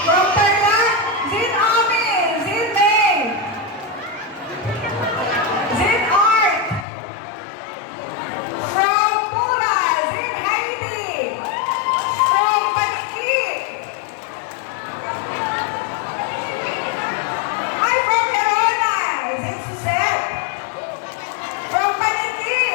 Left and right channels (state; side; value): drops out; right; at 6.9 s